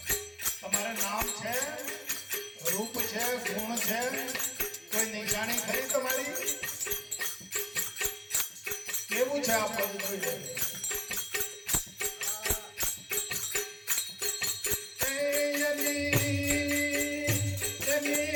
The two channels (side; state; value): both; identical; correlation 1.00